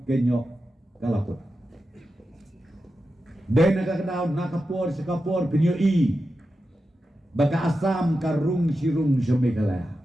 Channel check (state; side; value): normal; both; correlation 0.90